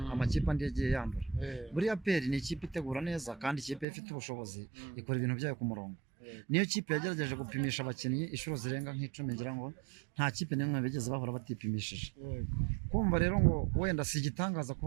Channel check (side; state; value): left; drops out; at 3.9 s